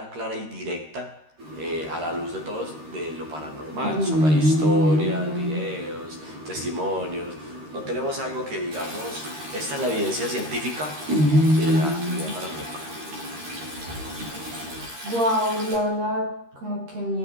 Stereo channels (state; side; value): late; left; 13 ms